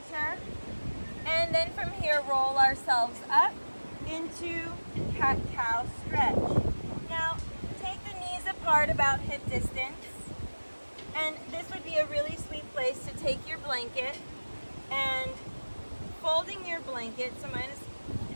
And then from here, roll ourselves up into cat-cow stretch. Now, take the knees apart about hip distance. And this would be a really sweet place to take your blanket and folding your blanket. So mine is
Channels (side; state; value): both; inverted; correlation -1.00